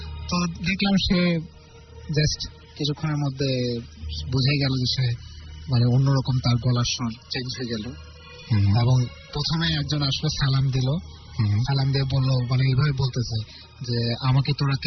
তো দেখলাম সে জাস্ট কিছুক্ষণের মধ্যে বুঝে গেল যে সে মানে অন্যরকম, তার গলার স্বর চেঞ্জ হয়ে গেল। এবং প্রথমে একজন আসলে সালাম দিল, সালাম দিয়ে বললো, মানে এইভাবে বলতেছে যে আমাকে তোরা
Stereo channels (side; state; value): both; identical; correlation 1.00